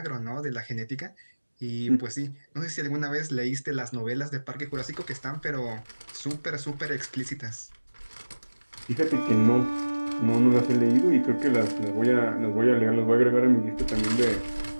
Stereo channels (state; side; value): inverted; both; correlation -1.00